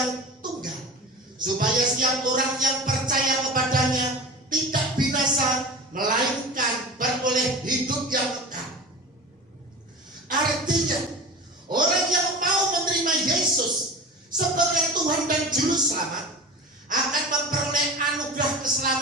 tunggal, supaya setiap orang yang percaya kepadanya tidak binasa, melainkan beroleh hidup yang kekal. Artinya, orang yang mau menerima Yesus sebagai Tuhan dan Juru Selamat akan memperoleh anugerah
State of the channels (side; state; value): both; normal; correlation 0.33